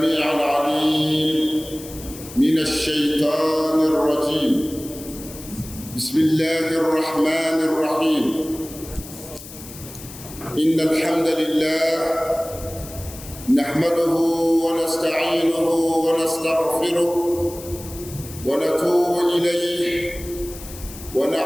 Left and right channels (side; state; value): left; noise; hiss, 15 dB below the sound